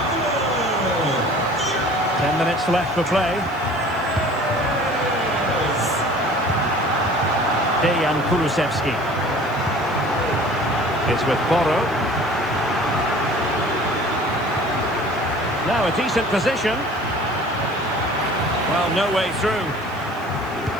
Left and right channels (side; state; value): right; noise; hiss, 25 dB below the sound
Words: 10 minutes left for play. Dejan Kulusevski. It's with Porro. Now a decent position. Well, no way through.